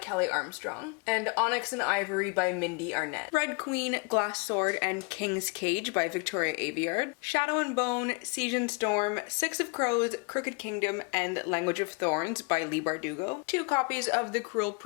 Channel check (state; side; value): quieter; right; 32.6 dB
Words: Armstrong, and Onyx and Ivory by Mindy Arnett, Red Queen, Glass Sword, and King's Cage by Victoria Aveyard, Shadow and Bone, Siege and Storm, Six of Crows, Crooked Kingdom, and Language of Thorns by Leigh Bardugo, 2 copies of The Cruel